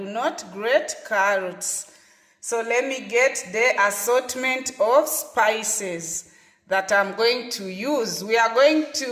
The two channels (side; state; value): both; identical; correlation 1.00